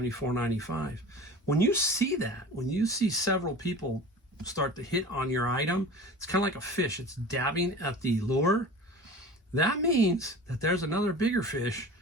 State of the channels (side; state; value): both; normal; correlation 0.38